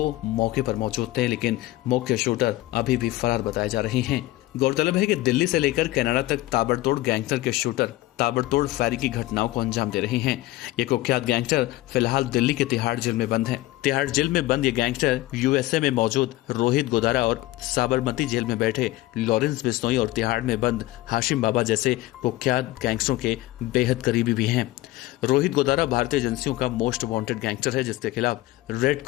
मौके पर मौजूद थे, लेकिन मुख्य शूटर अभी भी फरार बताए जा रहे हैं। गौरतलब है कि दिल्ली से लेकर कनाडा तक ताबड़तोड़ गैंगस्टर के शूटर ताबड़तोड़ फायरिंग की घटनाओं को अंजाम दे रहे हैं। ये कुख्यात गैंगस्टर फिलहाल दिल्ली के तिहाड़ जेल में बंद हैं। तिहाड़ जेल में बंद ये गैंगस्टर USA में मौजूद रोहित गुदारा और साबरमती जेल में बैठे लॉरेंस बिश्नोई और तिहाड़ में बंद हाशिम बाबा जैसे कुख्यात गैंगस्टरों के बेहद करीबी भी हैं। रोहित गुदारा भारतीय एजेंसियों का मोस्ट वांटेड गैंगस्टर है, जिसके खिलाफ रेड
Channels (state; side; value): quieter; right; 17.6 dB